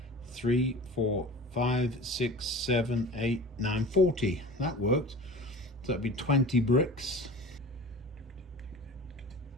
3, 4, 5, 6, 7, 8, 9, 40. That worked. So that'd be 20 bricks.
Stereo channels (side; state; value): both; normal; correlation 0.38